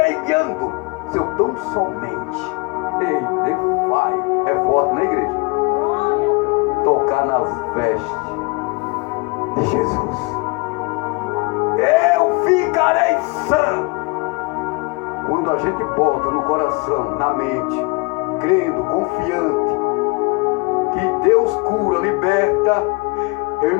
seu tão somente. Ei, defai. É forte, né, igreja? Tocar nas vestes de Jesus. Eu ficarei sã. Quando a gente bota no coração, na mente, crendo, confiante, que Deus cura, liberta, eu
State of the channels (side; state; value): right; quieter; 28.1 dB